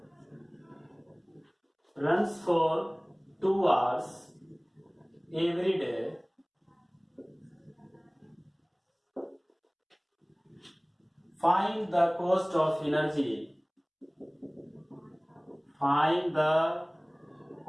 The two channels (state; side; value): identical; both; correlation 1.00